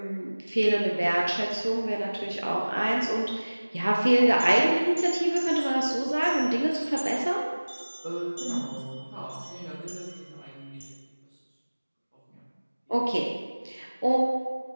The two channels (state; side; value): inverted; both; correlation -1.00